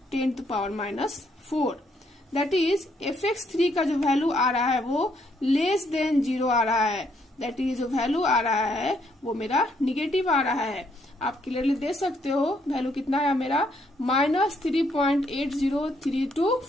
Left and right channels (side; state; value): both; normal; correlation 0.72